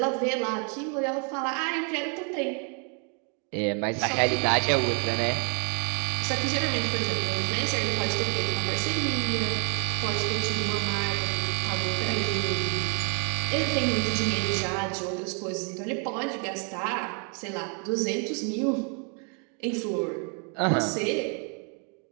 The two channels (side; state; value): left; quieter; 38.9 dB